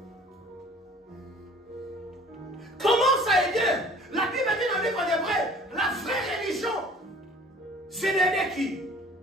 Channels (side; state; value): both; normal; correlation 0.50